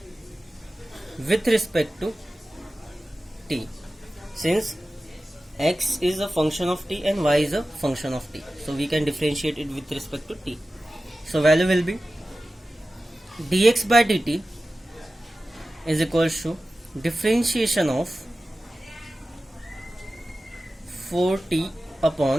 with respect to t, since x is a function of t and y is a function of t, so we can differentiate it with respect to t. So value will be dx by dt is equals to differentiation of 4t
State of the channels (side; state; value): both; normal; correlation 0.95